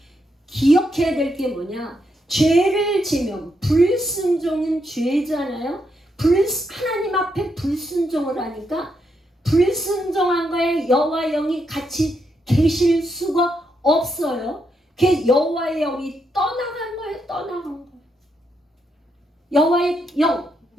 기억해야 될 게 뭐냐, 죄를 지면 불순종은 죄잖아요. 하나님 앞에 불순종을 하니까 불순종한 거에 여호와의 영이 같이 계실 수가 없어요. 그 여호와의 영이 떠나간 거예요. 떠나간 거예요.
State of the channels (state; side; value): normal; both; correlation 0.80